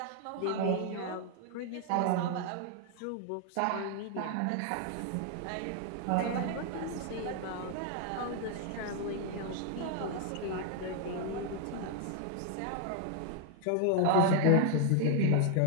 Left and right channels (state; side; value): different; both; correlation 0.00